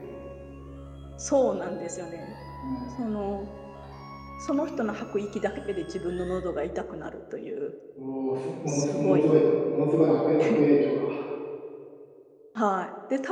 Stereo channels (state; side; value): identical; both; correlation 1.00